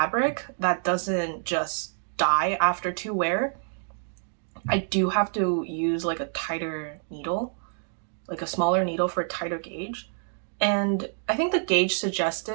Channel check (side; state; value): left; silent; 60 dB below the other